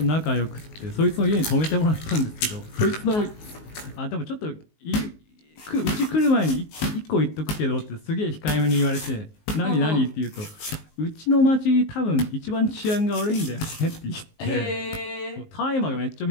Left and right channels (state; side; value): late; right; 19 ms